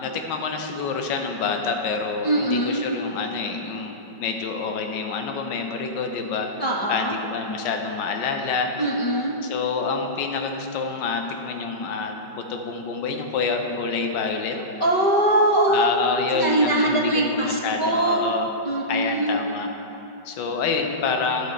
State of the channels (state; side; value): late; right; 5.3 ms